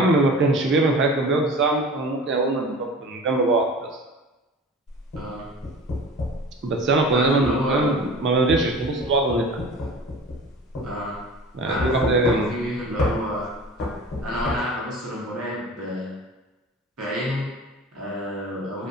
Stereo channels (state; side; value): normal; both; correlation 0.39